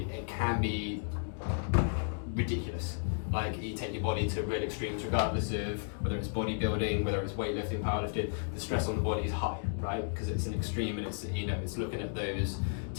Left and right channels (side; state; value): right; silent; digital silence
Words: it can be ridiculous. Like you take your body to real extremes, regardless of whether it's bodybuilding, whether it's weightlifting, powerlifting. The stress on the body is high, right? Because it's an extreme, and it's, you know, it's looking at those,